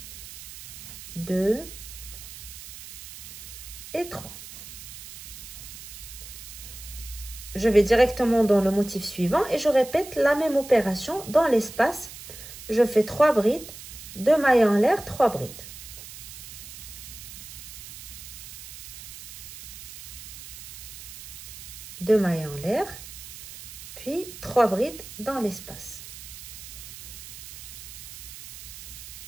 2 et 3. Je vais directement dans le motif suivant et je répète la même opération dans l'espace. Je fais 3 brides, 2 mailles en l'air, 3 brides. 2 mailles en l'air, puis 3 brides dans l'espace.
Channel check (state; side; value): noise; right; hiss, 13 dB below the sound